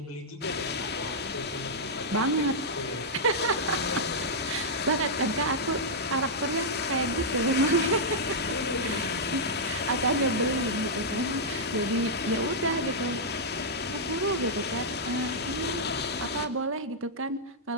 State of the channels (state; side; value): normal; both; correlation -0.08